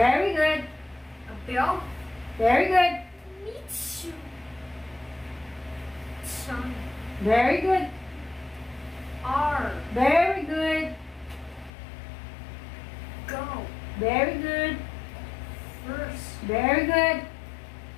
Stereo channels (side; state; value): right; drops out; at 11.7 s